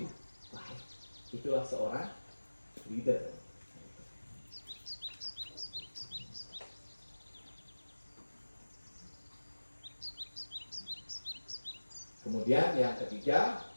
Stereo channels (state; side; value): inverted; both; correlation -1.00